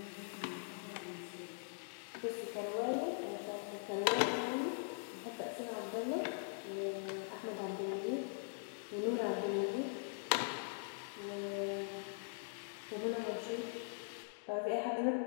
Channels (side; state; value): right; silent; digital silence